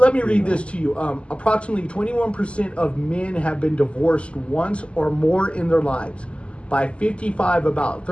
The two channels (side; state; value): right; late; 0.056 ms